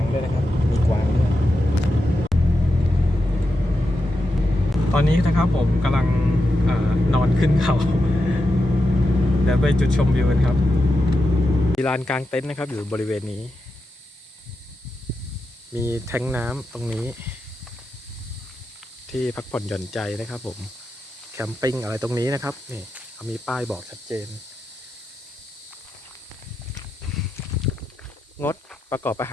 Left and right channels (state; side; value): normal; both; correlation 0.88